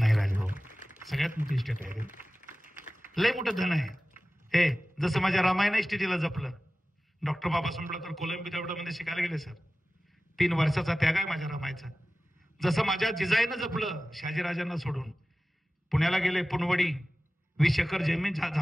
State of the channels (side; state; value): both; normal; correlation 0.96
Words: राजाओ, सगळ्यात मोठी शेट आहे. लय मोठं धन आहे हे. जसं माझ्या रामायण इस्टेटीला जपलं. डॉक्टर बाबासाहेब आंबेडकर कोलंबी मध्ये शिकायला गेले सर. 3 वर्षाचा त्याग आहे माझ्या रामायचा. जसं माझ्या जिजाईनं जपलं शहाजीराजांना सोडून. पुण्याला गेले, पुनवडी 20 एकर जमीन